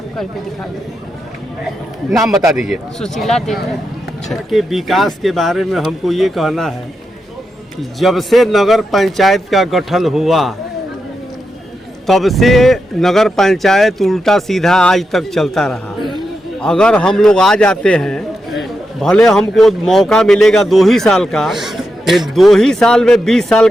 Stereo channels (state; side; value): normal; both; correlation 0.86